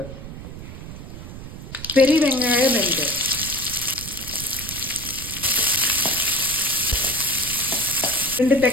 பெரிய வெங்காயம் 2, ரெண்டு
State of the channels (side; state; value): right; noise; rumble, 12 dB below the sound